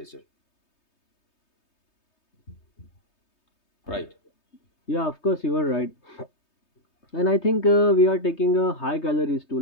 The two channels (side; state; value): right; late; 3.2 ms